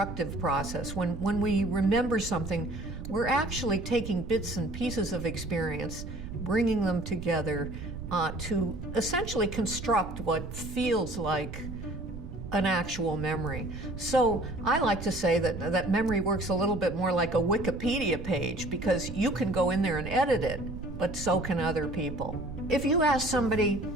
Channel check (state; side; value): noise; right; rumble, 9 dB below the sound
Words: process. When we remember something, we're actually taking bits and pieces of experience, bringing them together to essentially construct what feels like an actual memory. So I like to say that memory works a little bit more like a Wikipedia page, because you can go in there and edit it, but so can other people. If you ask somebody,